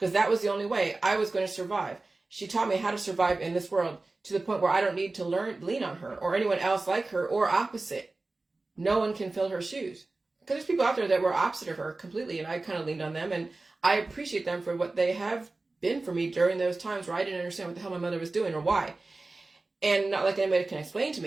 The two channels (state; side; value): quieter; left; 3.3 dB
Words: that was the only way I was going to survive. She taught me how to survive in this world to the point where I don't need to lean on her or anyone else like her or opposite. No one can fill her shoes. Because there's people out there that were opposite of her completely, and I kind of leaned on them, and I appreciate them for what they have been for me during those times where I didn't understand what the hell my mother was doing or why. And not like anybody can explain to